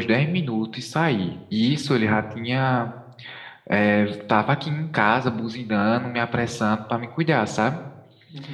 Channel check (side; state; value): both; identical; correlation 1.00